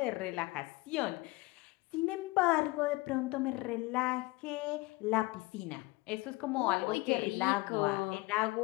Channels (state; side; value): quieter; right; 22.2 dB